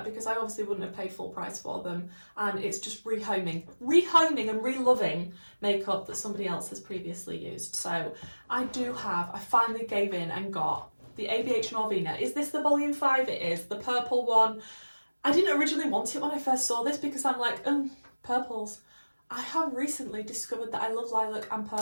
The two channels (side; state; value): both; inverted; correlation -1.00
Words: because I obviously wouldn't have paid full price for them, and it's just rehoming and re-loving makeup that somebody else has previously used. So I finally gave in and got the ABH Norvina. Is this the volume 5? It is, the purple one. I didn't originally want it when I first saw this because I'm like, purples. I have recently discovered that I love lilac and